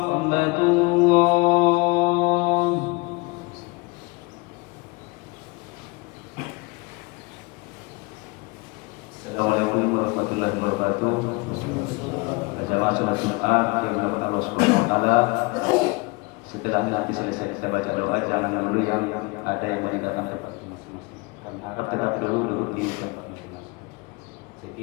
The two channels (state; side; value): quieter; right; 27.0 dB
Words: الله. Assalamualaikum warahmatullahi wabarakatuh. Jamaah sholat Jumat yang dimuliakan Allah Subhanahu wa taala. Setelah nanti selesai kita baca doa, jangan dulu yang ada yang meninggalkan tempat masing-masing. Dan harap tetap dulu duduk di tempat masing-masing.